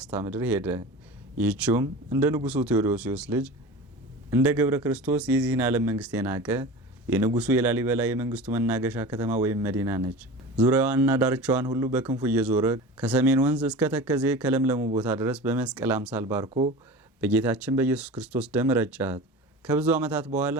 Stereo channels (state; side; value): normal; both; correlation 0.33